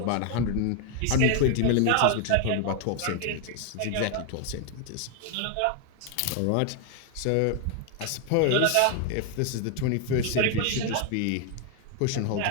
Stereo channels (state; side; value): different; both; correlation 0.00